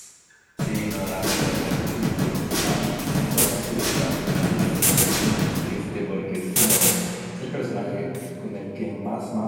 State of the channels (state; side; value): identical; both; correlation 1.00